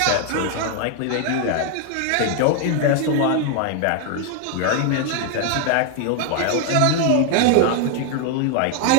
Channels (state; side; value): different; both; correlation 0.01